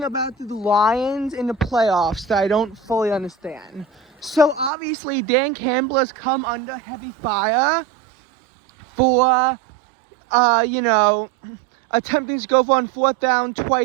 about the Lions in the playoffs that I don't fully understand. So obviously Dan Campbell has come under heavy fire for, attempting to go for on fourth down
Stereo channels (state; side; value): drops out; left; at 4.7 s